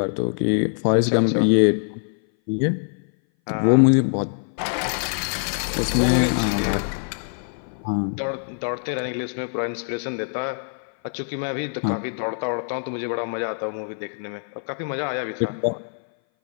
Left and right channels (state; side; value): silent; right; 59 dB below the other